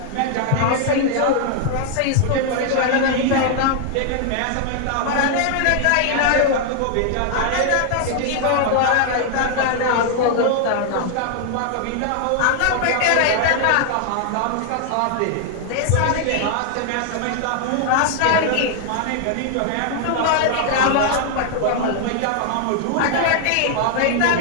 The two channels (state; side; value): different; both; correlation 0.00